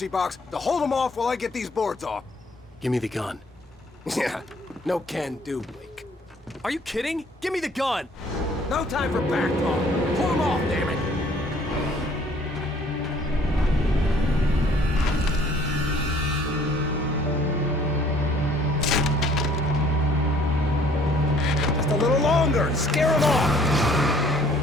box to hold them off while I get these boards off. Give me the gun. Yeah, no can do, Wake. Are you kidding? Give me the gun! No time for back talk. Pull them off, damn it! Just a little longer. Scare them off.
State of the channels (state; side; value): normal; both; correlation 0.58